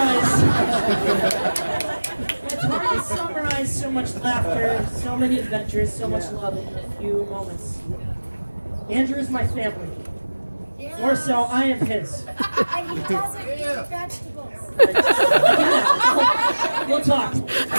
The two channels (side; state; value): both; inverted; correlation -1.00